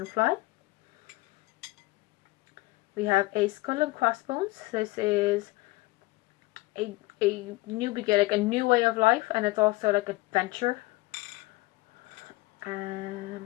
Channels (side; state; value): right; quieter; 21.0 dB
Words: We have a skull and crossbones. This is a new beginning, like a new way of life, and it's also like adventure.